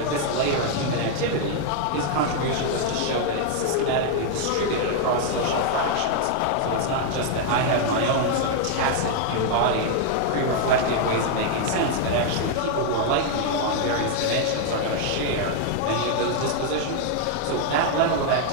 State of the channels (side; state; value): both; different; correlation 0.00